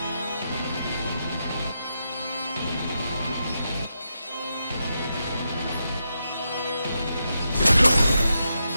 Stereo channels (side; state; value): both; inverted; correlation -0.85